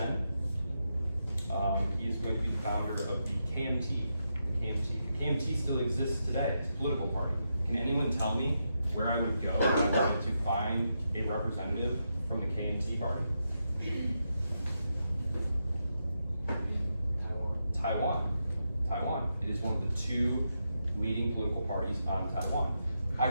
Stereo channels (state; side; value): inverted; both; correlation -0.85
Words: He is going to be the founder of the KMT. The KMT still exists today. It's a political party. Can anyone tell me where I would go if I wanted to find a representative from the KMT party? Taiwan. It is one of the two leading political parties on Taiwan.